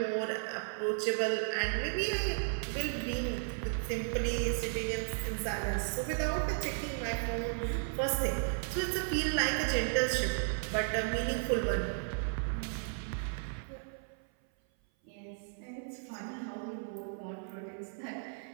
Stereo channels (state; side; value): silent; left; 55 dB below the other